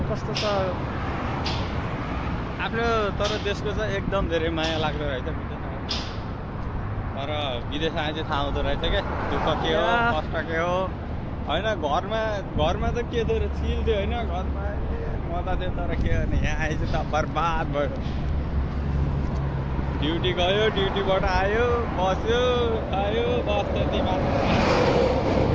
कस्तो छ आफ्नो। तर देशको चाहिँ एकदम धेरै माया लाग्दो रहेछ विदेश। तर विदेश आए चाहिँ थाहा हुँदो रहेछ क्या, दुःख के हो कष्ट के हो होइन। घरमा त के थियो चिल थियो होइन, घरमा मजा थियो। तर के गर्ने, यहाँ आएछ त बर्बाद भयो। ड्युटी गयो, ड्युटीबाट आयो, बस्यो खायो, बस त्यति मात्र।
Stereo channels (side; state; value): both; identical; correlation 1.00